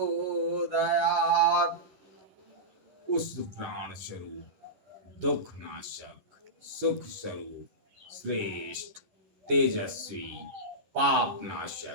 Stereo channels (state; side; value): late; left; 11 ms